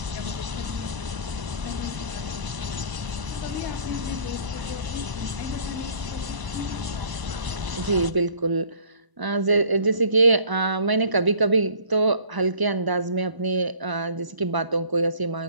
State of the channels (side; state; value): left; late; 1.0 ms